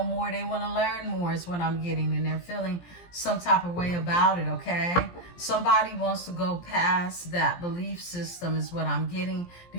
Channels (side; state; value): right; late; 17 ms